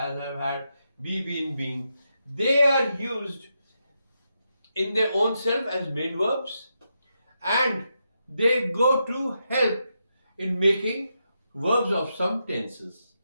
have, had, be, been. They are used in their own self as main verbs and they go to help in making verbs of some tenses.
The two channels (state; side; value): inverted; both; correlation -0.84